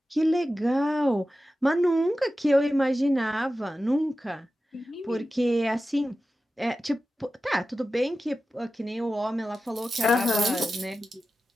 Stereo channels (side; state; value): both; normal; correlation 0.93